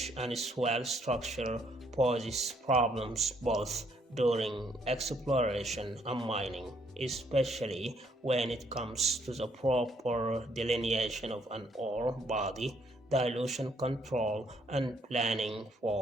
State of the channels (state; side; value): normal; both; correlation 0.69